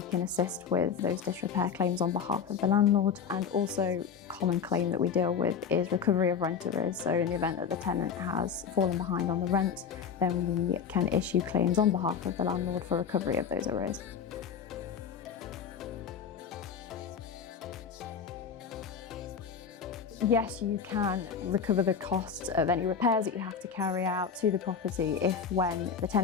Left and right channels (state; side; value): quieter; right; 6.7 dB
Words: can assist with those disrepair claims on behalf of the landlord. And also, a common claim that we deal with is recovery of rent arrears. So in the event that the tenant has fallen behind on the rent, then we can issue claims on behalf of the landlord for recovery of those arrears. Yes, you can recover the costs of any repairs that you have to carry out to the property if, when the